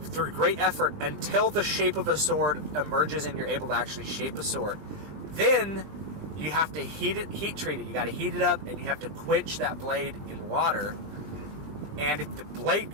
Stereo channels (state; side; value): late; left; 20 ms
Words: great effort until the shape of a sword emerges and you're able to actually shape a sword. Then you have to heat treat it. You got to heat it up, and you have to quench that blade in water. And if the